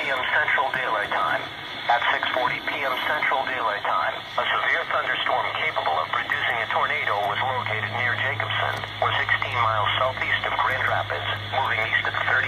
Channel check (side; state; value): both; identical; correlation 1.00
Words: Central Daylight Time. At 6:40 p.m. Central Daylight Time, a severe thunderstorm capable of producing a tornado was located near Jacobson, or 16 miles southeast of Grand Rapids, moving east at